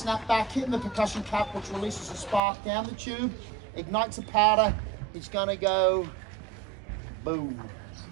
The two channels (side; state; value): left; drops out; at 2.4 s